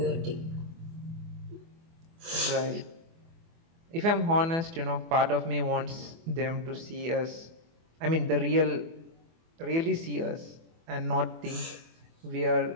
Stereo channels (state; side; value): late; left; 24 ms